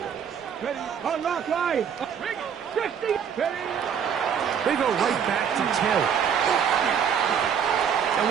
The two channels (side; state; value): left; quieter; 7.7 dB